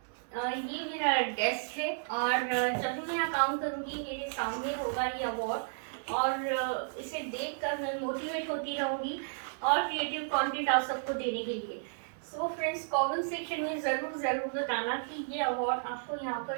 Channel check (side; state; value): left; silent; digital silence